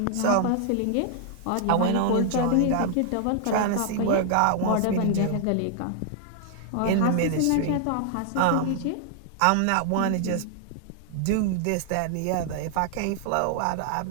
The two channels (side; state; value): both; different; correlation 0.00